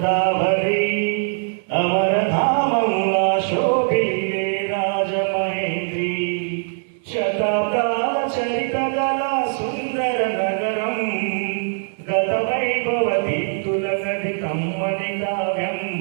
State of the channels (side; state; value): left; silent; digital silence